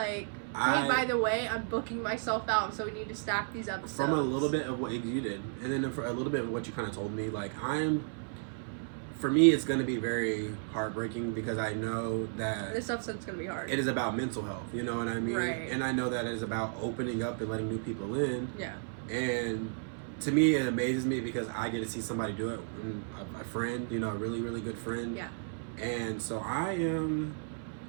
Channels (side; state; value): left; silent; 56 dB below the other